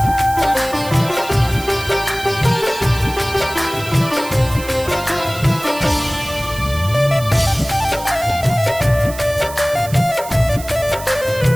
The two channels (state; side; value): noise; right; hiss, 14 dB below the sound